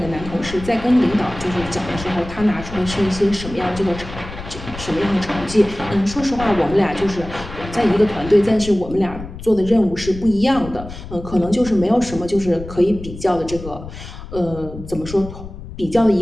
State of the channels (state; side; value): noise; left; rumble, 12 dB below the sound